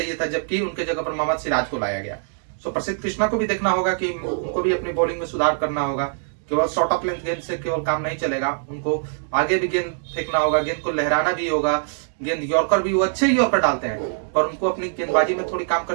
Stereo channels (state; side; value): silent; left; digital silence